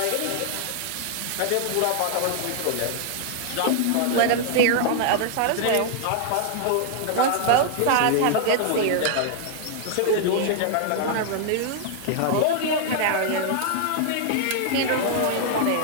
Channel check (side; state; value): both; different; correlation -0.01